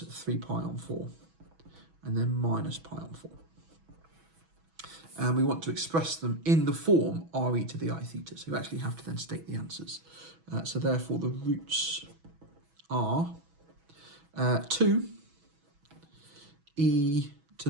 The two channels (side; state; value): left; late; 6.1 ms